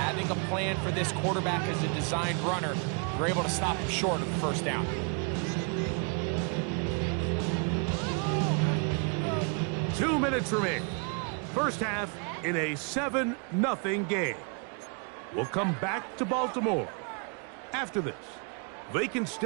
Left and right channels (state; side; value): quieter; left; 37.6 dB